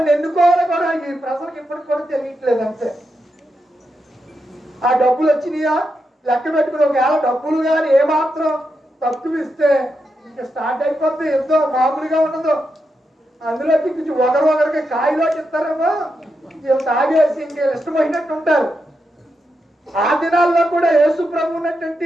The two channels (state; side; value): normal; both; correlation 0.85